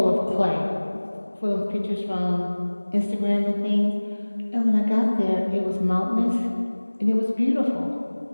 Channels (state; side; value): inverted; both; correlation -1.00